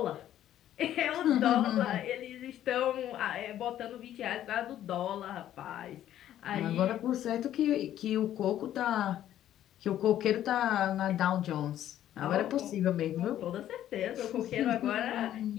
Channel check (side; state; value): right; quieter; 11.9 dB